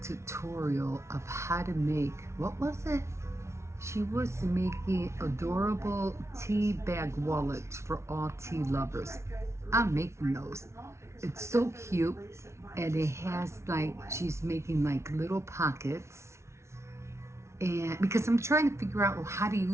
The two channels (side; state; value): left; late; 0.13 ms